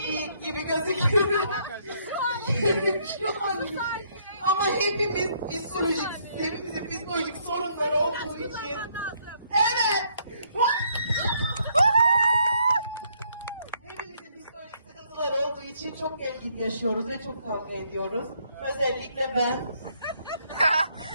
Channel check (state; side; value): inverted; both; correlation -0.69